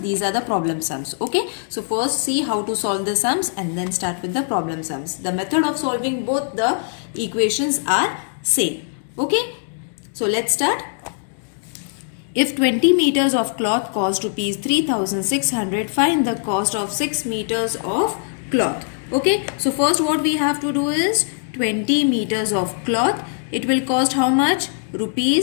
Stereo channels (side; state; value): right; silent; digital silence